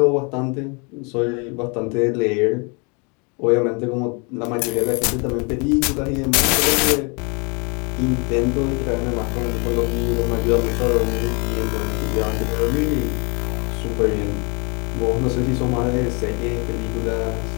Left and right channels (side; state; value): right; quieter; 33.1 dB